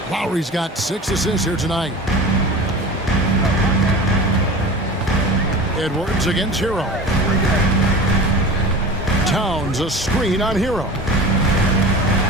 Lowry's got 6 assists here tonight. Edwards against Hero. Towns a screen on Hero.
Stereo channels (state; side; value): normal; both; correlation 0.35